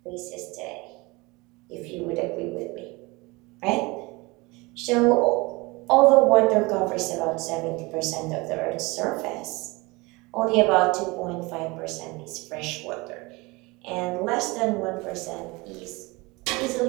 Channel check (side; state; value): left; quieter; 24.5 dB